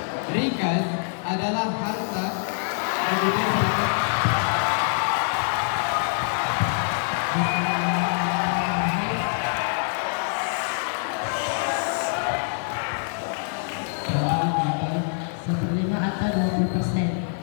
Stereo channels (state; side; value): silent; right; 62 dB below the other